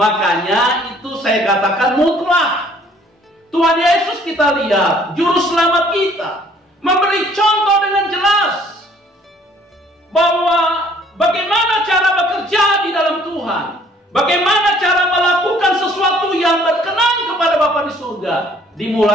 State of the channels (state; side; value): normal; both; correlation 0.59